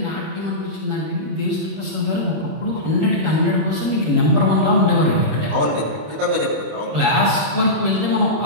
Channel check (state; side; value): late; left; 26 ms